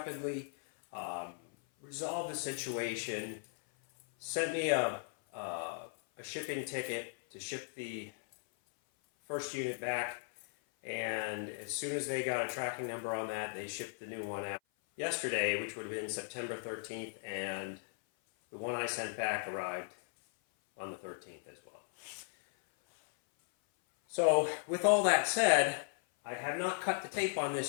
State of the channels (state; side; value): silent; right; 53 dB below the other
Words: resolved the situation, sent me a shipping ticket to ship the first unit back, and as soon as they got a tracking number on that, they shipped the new one out yesterday, which would have been September 13th, and the one I sent back arrived on the 13th as well. So with all that said, I have not cut the tape on